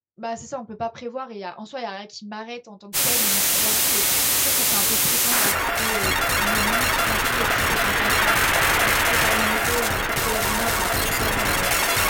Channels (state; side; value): identical; both; correlation 1.00